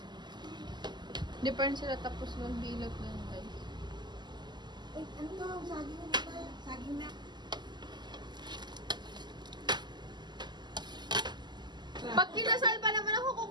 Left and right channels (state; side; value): late; left; 0.21 ms